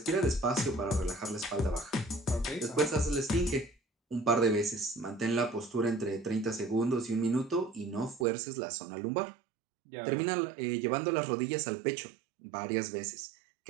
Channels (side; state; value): left; drops out; at 8.2 s